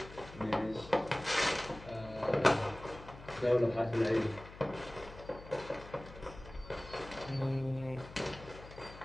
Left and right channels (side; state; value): left; noise; hum, 16 dB below the sound